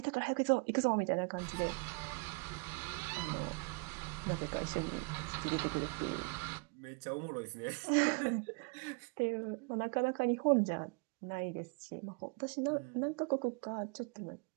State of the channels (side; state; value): left; quieter; 33.2 dB